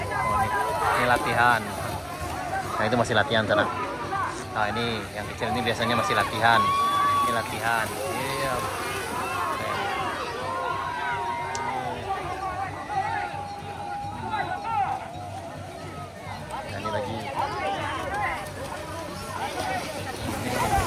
Oh, ini latihan. Nah, itu masih latihan sana. Nah ini yang kecil ini biasanya masih latihan. Ini latihan. Iya. Nah, ini lagi.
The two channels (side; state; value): both; identical; correlation 1.00